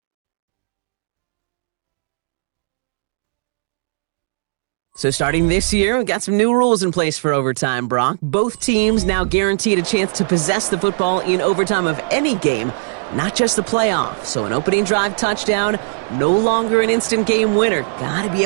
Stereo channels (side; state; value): left; silent; digital silence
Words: So starting this year, we've got some new rules in place for overtime, Brock. Both teams now guaranteed a chance to possess the football in overtime of any game, not just the playoff. So an opening drive touchdown, no longer an instant game winner. Got to be